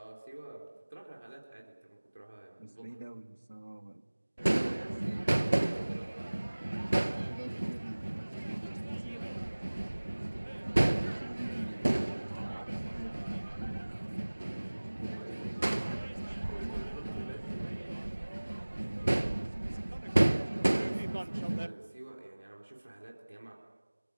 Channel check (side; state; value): both; inverted; correlation -1.00